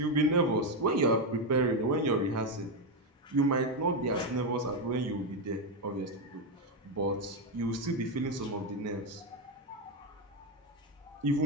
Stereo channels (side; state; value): both; normal; correlation 0.07